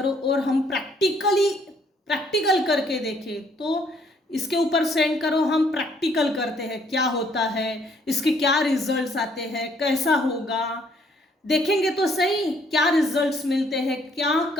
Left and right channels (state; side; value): normal; both; correlation 0.65